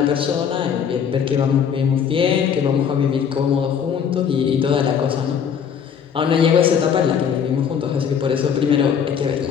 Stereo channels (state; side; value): quieter; right; 7.6 dB